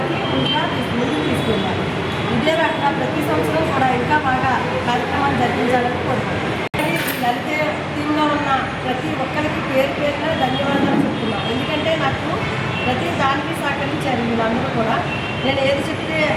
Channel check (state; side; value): identical; both; correlation 1.00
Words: ముందుకు తీసుకెళ్ళాము. ఇదే రకంగా ప్రతి సంవత్సరం కూడా ఇంకా బాగా కార్యక్రమాలు జరిపించాలని కోరుకుంటున్నాను. లలిత టీంలో ఉన్న ప్రతి ఒక్కరికి పేరు పేరున ధన్యవాదాలు చెప్తున్నాను. ఎందుకంటే నాకు ప్రతి దానికి సహకరించారు వీళ్ళందరూ కూడా. నేను ఏది చెప్తే